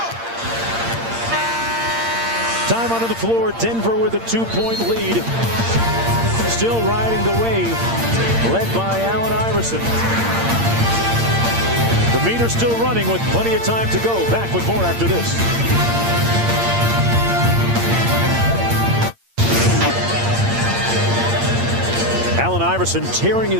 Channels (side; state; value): left; late; 8.7 ms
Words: Time onto the floor. Denver with a 2-point lead. Still riding the wave, led by Allen Iverson. The meter's still running with plenty of time to go. Back with more after this. Allen Iverson tearing